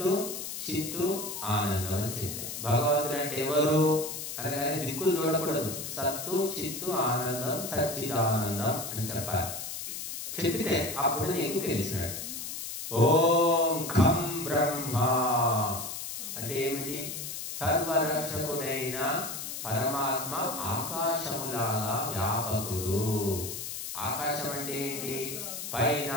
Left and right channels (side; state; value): left; noise; hiss, 6 dB below the sound